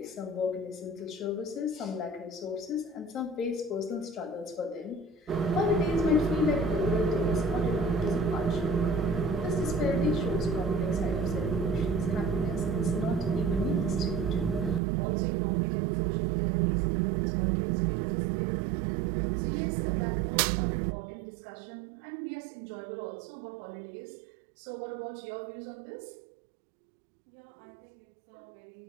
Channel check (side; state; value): left; drops out; at 14.8 s